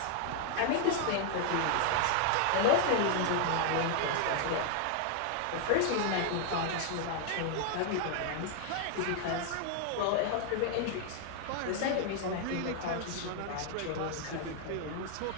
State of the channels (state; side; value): different; both; correlation 0.00